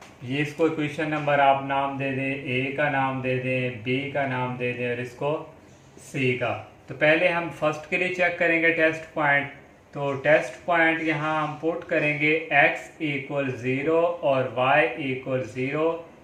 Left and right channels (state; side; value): identical; both; correlation 1.00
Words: ये इसको इक्वेशन नंबर आप नाम दे दें, ए का नाम दे दें, बी का नाम दे दें, और इसको सी का। तो पहले हम फर्स्ट के लिए चेक करेंगे टेस्ट पॉइंट। तो टेस्ट पॉइंट यहाँ हम पुट करेंगे x इक्वल 0 और y इक्वल 0